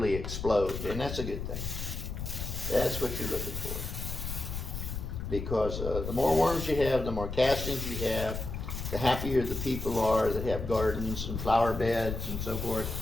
explode, and that's a good thing. That's what you're looking for, because the more worms you have, the more castings you have, the happier the people are that have gardens and flower beds and so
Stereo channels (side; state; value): left; noise; rumble, 5 dB below the sound